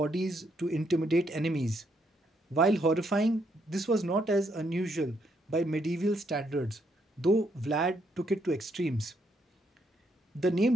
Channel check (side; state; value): both; normal; correlation 0.75